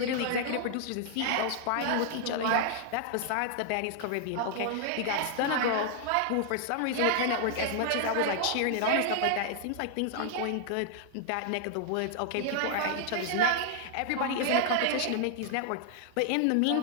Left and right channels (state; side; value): different; both; correlation 0.00